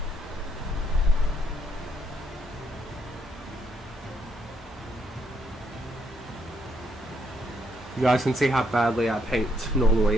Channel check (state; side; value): normal; both; correlation 0.74